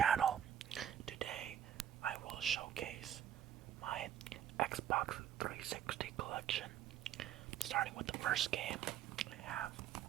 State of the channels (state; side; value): quieter; left; 10.1 dB